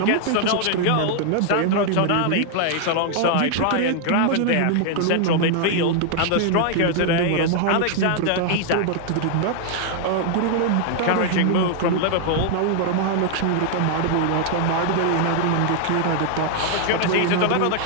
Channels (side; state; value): both; different; correlation 0.00